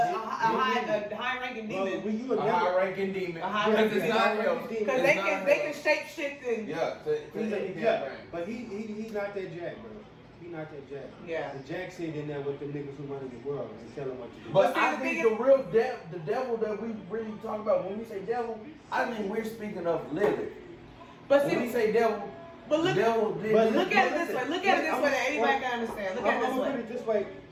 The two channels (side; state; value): both; identical; correlation 1.00